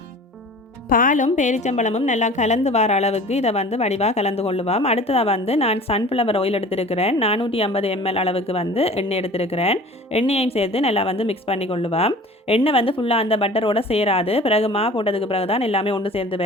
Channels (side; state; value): both; normal; correlation 0.43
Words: பாலும் பேரிச்சம்பழமும் நல்லா கலந்து வர அளவுக்கு இதை வடிவாக கலந்து கொள்ளுவோம். அடுத்ததாக நான் சன்ஃப்ளவர் ஆயில் எடுத்துருக்கிறேன். 450 ml அளவுக்கு எண்ணெய் எடுத்துருக்கிறேன். எண்ணெயையும் சேர்த்து நல்லா மிக்ஸ் பண்ணி கொள்ளுவோம். எண்ணெய் ஃபுல்லாக அந்த பட்டரோட சேராது. பிறகு மா போட்டதுக்கு பிறகு தான் எல்லாமே ஒன்று சேர்ந்து